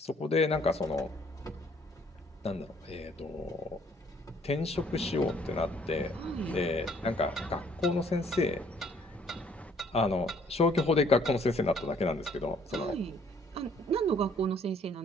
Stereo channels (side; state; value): both; normal; correlation 0.62